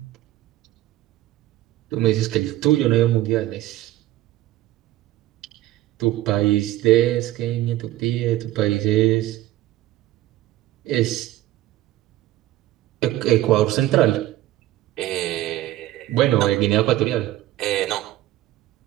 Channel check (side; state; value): left; quieter; 15.2 dB